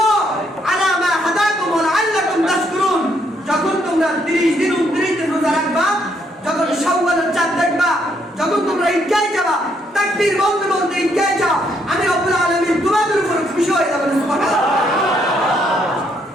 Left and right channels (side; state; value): both; normal; correlation 0.72